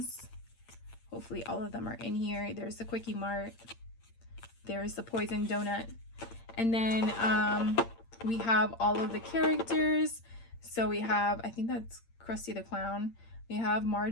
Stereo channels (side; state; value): right; late; 8.7 ms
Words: Hopefully all of them are in here. There's the Quickie Mart. There's the Poison Donut. And then we have all of the characters. So we have, I think that's Krusty the Clown. We have